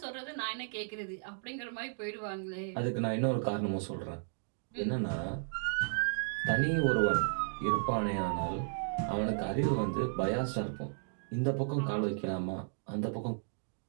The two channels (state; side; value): silent; left; digital silence